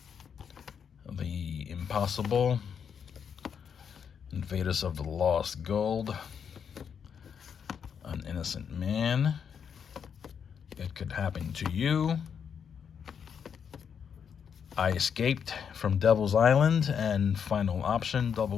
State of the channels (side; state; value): right; quieter; 7.3 dB